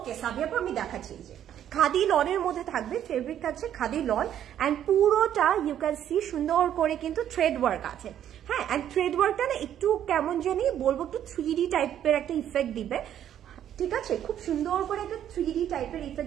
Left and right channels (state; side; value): quieter; left; 10.5 dB